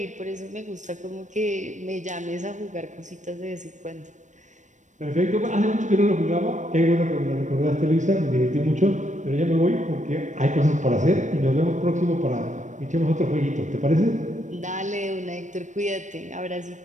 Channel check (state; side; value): late; left; 0.35 ms